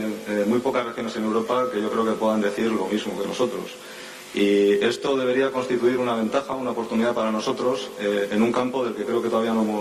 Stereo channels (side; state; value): both; identical; correlation 1.00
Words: regiones en Europa que yo creo que puedan decir lo mismo que nosotros. Y esto debería constituir una ventaja, una oportunidad para nosotros en un campo del que creo que todavía no